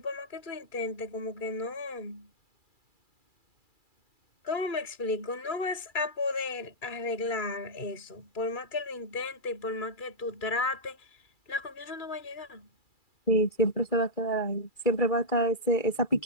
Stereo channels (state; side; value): late; right; 2.3 ms